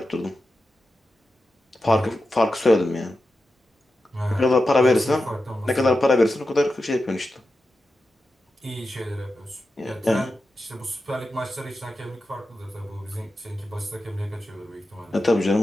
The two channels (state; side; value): normal; both; correlation 0.91